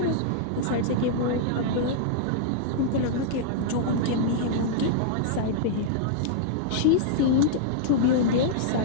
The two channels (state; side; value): different; both; correlation -0.02